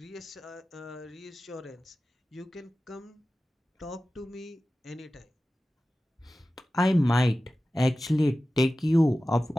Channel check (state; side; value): normal; both; correlation 0.95